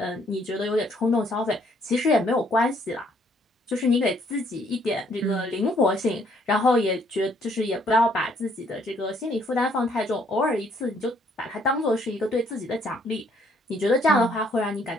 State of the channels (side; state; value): both; normal; correlation 0.66